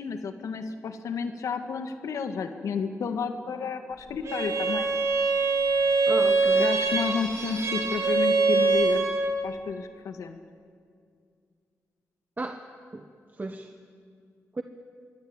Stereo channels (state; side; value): normal; both; correlation 0.66